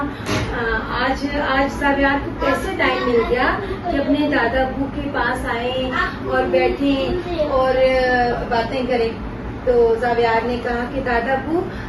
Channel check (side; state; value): both; identical; correlation 1.00